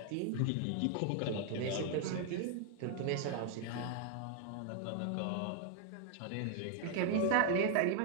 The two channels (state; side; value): different; both; correlation 0.00